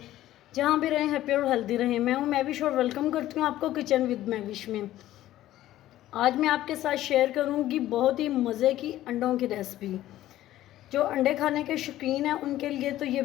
जहाँ भी रहें हैप्पी और हेल्दी रहें। मैं हूँ मैविश और वेलकम करती हूँ आपको किचन विद मैविश में। आज मैं आपके साथ शेयर करूँगी बहुत ही मज़े की अंडों की रेसिपी। जो अंडे खाने के शौकीन हैं उनके लिए तो ये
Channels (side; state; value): right; quieter; 14.1 dB